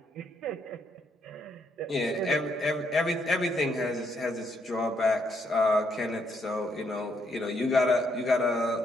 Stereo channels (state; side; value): normal; both; correlation 0.74